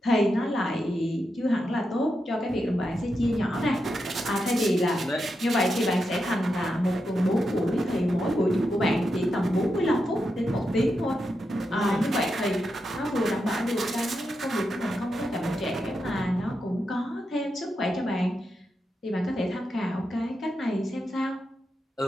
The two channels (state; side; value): normal; both; correlation 0.86